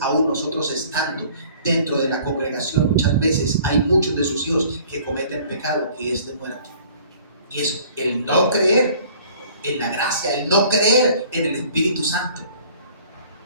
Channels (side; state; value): both; inverted; correlation -0.52